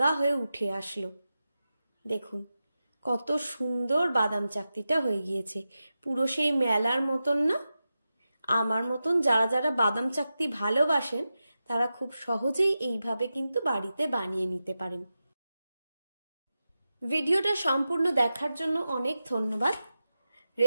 হয়ে উঠে আসলো। দেখুন কত সুন্দর বাদাম চাকতিটা হয়ে গিয়েছে, পুরো সেই মেলার মতন না? আমার মতন যারা যারা বাদাম চাকতি ভালোবাসেন তারা খুব সহজেই এইভাবে কিন্তু বাড়িতে বানিয়ে নিতে পারেন। ভিডিওটা সম্পূর্ণ দেখার জন্য অনেক ধন্যবাদ।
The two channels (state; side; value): inverted; both; correlation -0.92